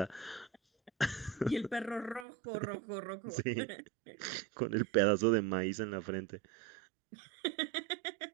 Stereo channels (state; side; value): drops out; left; at 2.2 s